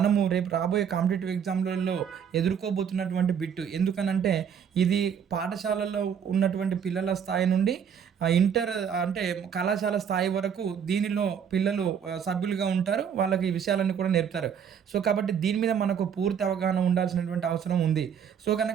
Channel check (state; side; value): quieter; left; 7.8 dB